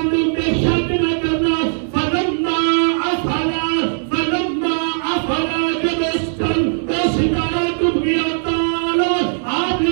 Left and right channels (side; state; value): left; silent; 67 dB below the other